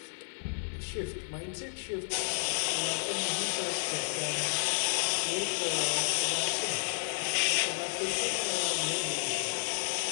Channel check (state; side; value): silent; right; 57 dB below the other